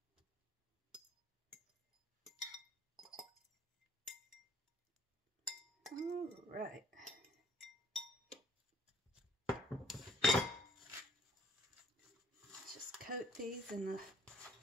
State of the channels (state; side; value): normal; both; correlation 0.60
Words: All right. Just coat these in the